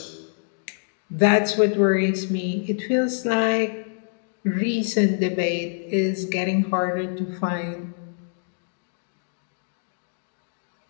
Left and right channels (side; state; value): right; silent; digital silence